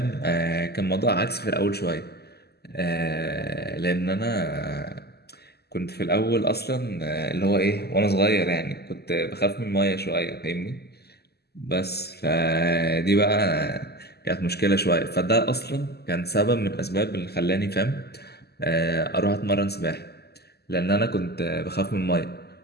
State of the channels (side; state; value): right; late; 0.47 ms